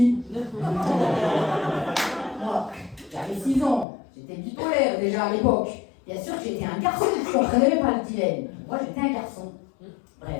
Moi, j'avais 6 ans, j'étais bipolaire déjà à l'époque. Bien sûr que j'étais un garçon, je ne comprenais pas le dilemme. Moi, j'étais un garçon.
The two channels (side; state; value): right; drops out; at 3.9 s